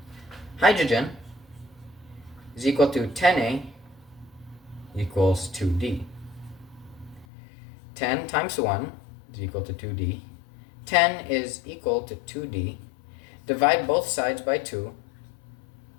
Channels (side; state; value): right; drops out; at 7.2 s